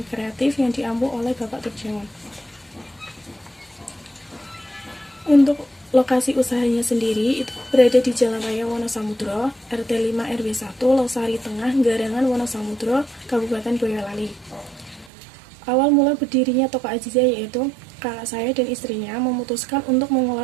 kreatif yang diampu oleh Bapak Turjawan. Untuk lokasi usahanya sendiri itu berada di Jalan Raya Wonosamudro, RT 5 RW 1, Losari Tengah, Garangan Wonosamudro, Kabupaten Boyolali. Awal mula berdirinya Toko Azizah yaitu kakak saya dan istrinya memutuskan untuk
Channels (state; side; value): drops out; left; at 15.1 s